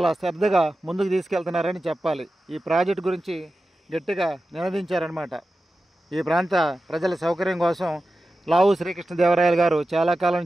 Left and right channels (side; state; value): both; normal; correlation 0.93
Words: శ్రద్ధగా ముందుకు తీసుకెళ్తున్నారని చెప్పాలి. ఈ ప్రాజెక్టు గురించి గట్టిగా నినదించారనమాట. ఈ ప్రాంత ప్రజల సౌకర్యం కోసం లావు శ్రీకృష్ణదేవరాయలు గారు చాలా కాలం